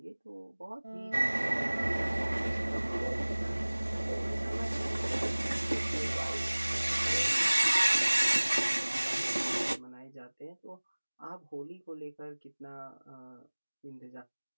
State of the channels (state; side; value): inverted; both; correlation -1.00